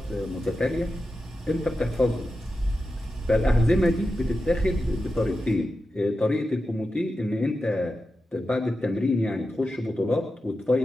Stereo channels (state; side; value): normal; both; correlation 0.91